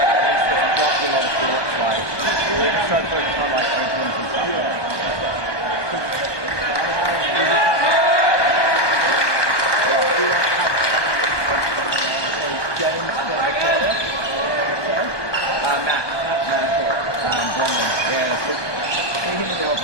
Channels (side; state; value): right; late; 1.2 ms